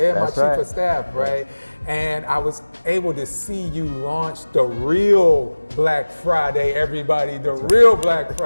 my chief of staff, right? And I was able to see you launch the real Black Friday, everybody, the real Black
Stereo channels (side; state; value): both; inverted; correlation -1.00